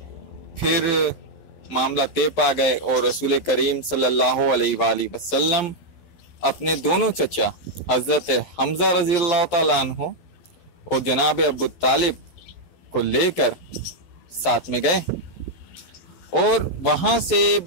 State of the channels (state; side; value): late; right; 11 ms